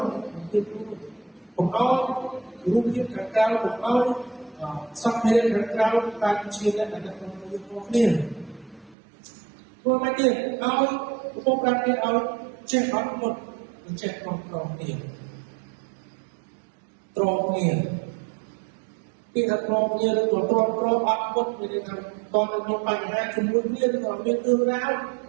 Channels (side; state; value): left; drops out; at 9.0 s